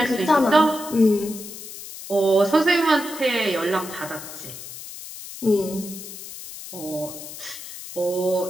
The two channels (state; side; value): noise; left; hiss, 12 dB below the sound